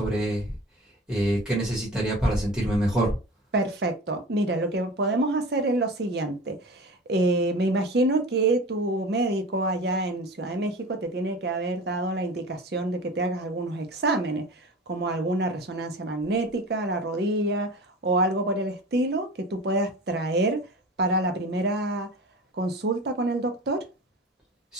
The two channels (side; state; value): both; normal; correlation 0.35